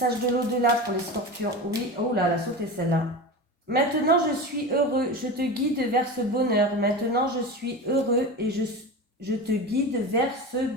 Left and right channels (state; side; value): normal; both; correlation 0.27